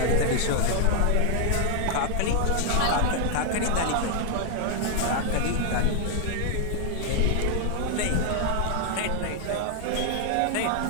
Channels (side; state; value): both; different; correlation 0.00